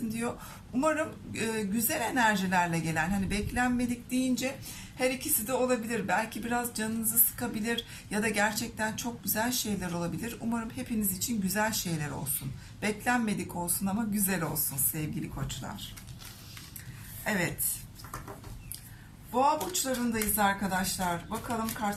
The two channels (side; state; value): both; identical; correlation 1.00